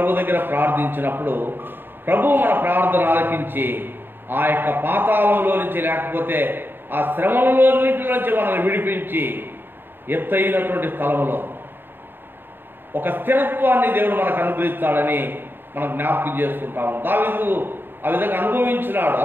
దగ్గర ప్రార్థించినప్పుడు ప్రభు మన ప్రార్థన ఆలకించి ఆ యొక్క పాతాళంలో నుంచి లేకపోతే ఆ శ్రమలన్నింటి నుంచి మనల్ని విడిపించి ఎత్తైనటువంటి స్థలంలో ఒక స్థిరత్వాన్ని దేవుడు మనకు అనుగ్రహిస్తాడని మనం జ్ఞాపకం చేసుకుంటాము. దావీదు ఆ విధంగా అనుభవించినాడు.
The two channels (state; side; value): late; left; 0.098 ms